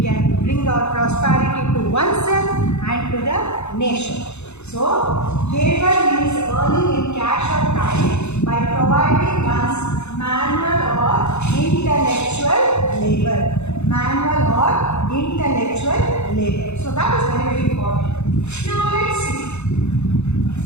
bring our prosperity to oneself and to the nation. So, labor means earning in cash or time by providing one's manual or intellectual labor. Manual or intellectual labor. So, that is very, very important. Now, let's see.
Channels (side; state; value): right; late; 0.81 ms